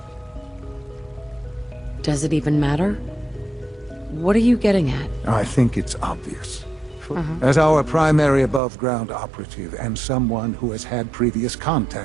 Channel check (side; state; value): left; drops out; at 8.6 s